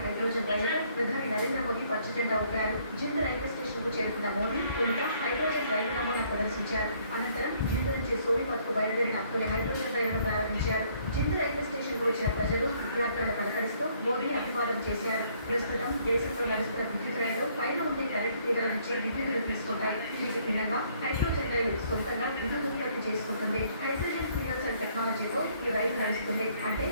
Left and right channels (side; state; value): both; inverted; correlation -0.65